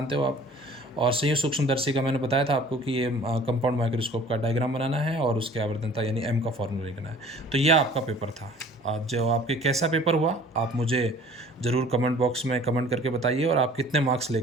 हो आप। और संयुक्त सूक्ष्मदर्शी का मैंने बताया था आपको कि ये कंपाउंड माइक्रोस्कोप का डायग्राम बनाना है, और उसके आवर्धनता यानी M का फॉर्मूला लिखना है। तो यह आपका पेपर था। आज जो आपके कैसा पेपर हुआ आप मुझे ज़रूर कमेंट बॉक्स में कमेंट करके बताइए, और आप कितने मार्क्स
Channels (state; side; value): normal; both; correlation 0.50